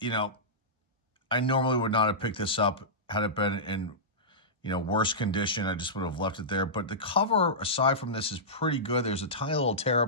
I normally would not have picked this up had it been in, worse condition. I just would have left it there. But the cover, aside from this, is pretty good. There's a tiny little tear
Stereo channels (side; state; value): both; normal; correlation -0.15